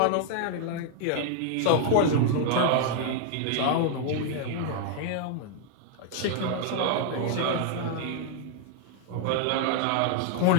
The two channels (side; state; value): both; different; correlation 0.00